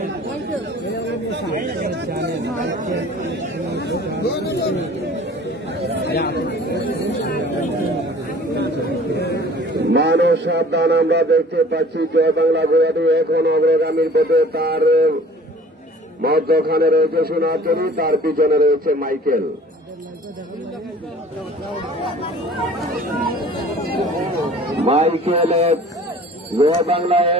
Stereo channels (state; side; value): normal; both; correlation 0.48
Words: মানুষ সাবধান। আমরা দেখতে পাচ্ছি জয় বাংলা ঘোড়াটি এখন অগ্রগামীর পথে। তার মধ্যখানে রয়েছে সোনাতরি, তার পিছনে রয়েছে মাইকেল। মাইকেল জয় বাংলা